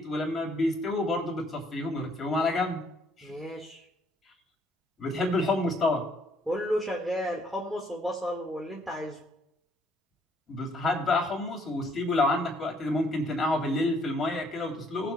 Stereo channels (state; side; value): normal; both; correlation 0.66